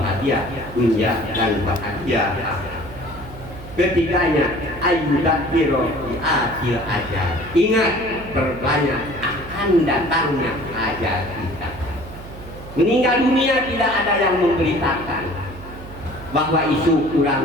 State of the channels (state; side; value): noise; right; hum, 15 dB below the sound